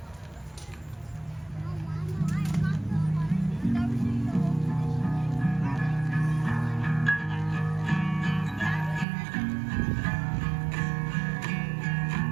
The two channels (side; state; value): left; drops out; at 9.1 s